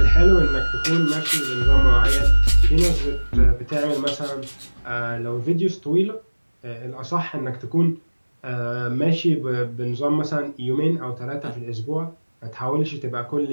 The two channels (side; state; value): both; inverted; correlation -1.00